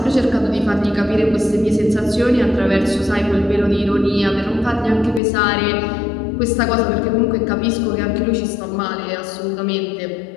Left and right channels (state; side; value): drops out; right; at 5.2 s